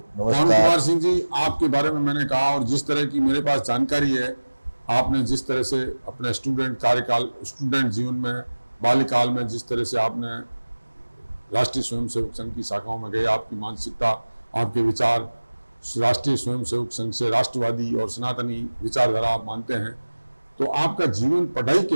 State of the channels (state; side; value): inverted; both; correlation -1.00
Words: पवन कुमार सिंह जी, आपके बारे में मैंने कहा और जिस तरह की मेरे पास जानकारी है, आपने जिस तरह से अपने स्टूडेंट जीवन में, बाल्यकाल में जिस तरह से आपने राष्ट्रीय स्वयंसेवक संघ की शाखाओं में गए, आपकी मानसिकता, आपके विचार राष्ट्रीय स्वयंसेवक संघ से राष्ट्रवादी और सनातनी विचारधारा आप मानते हैं। तो आपका जीवन पढ़ाई